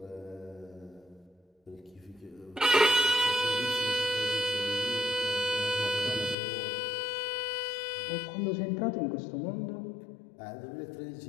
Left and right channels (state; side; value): drops out; right; at 6.4 s